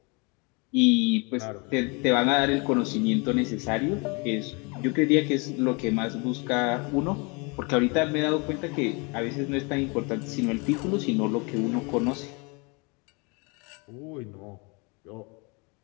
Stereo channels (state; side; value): quieter; right; 30.5 dB